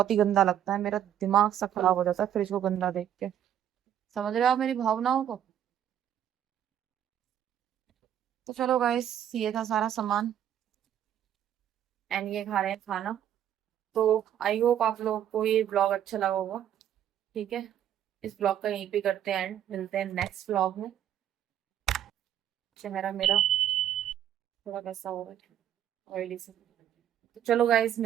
ही गंदा लगता है, मेरा दिमाग सा खराब हो जाता है फ्रिज को गंदा देख के। समझ रहे हो आप मेरी भावनाओं को? तो चलो गाइस, ये था सारा सामान एंड ये खा रहे हैं खाना। तो आई होप आप लोगों को ये ब्लॉग अच्छा लगा होगा। ठीक है, इस ब्लॉग का यहीं पे करते हैं एंड, मिलते हैं नेक्स्ट ब्लॉग में। चेहरा मेरा थोड़ा कैसा हो रहा है, ऑयली से। तो चलो गाइस,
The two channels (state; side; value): quieter; left; 10.4 dB